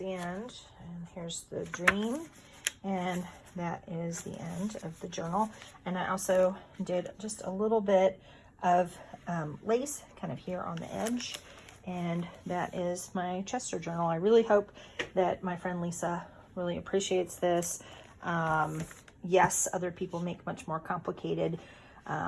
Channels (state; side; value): identical; both; correlation 1.00